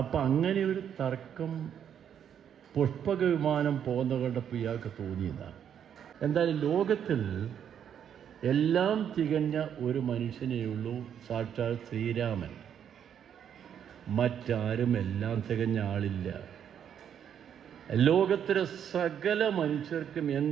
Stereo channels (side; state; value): left; quieter; 8.8 dB